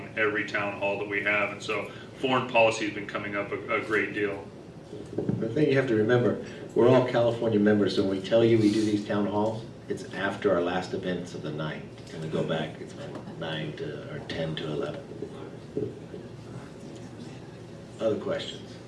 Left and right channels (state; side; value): identical; both; correlation 1.00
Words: every town hall that we have. And so foreign policy has been coming up a great deal. The thing you have to remember, we're all California members, so when we tell you we do these town halls, It's after our last events of the night. And we go back, it's 10 to 11. Other questions?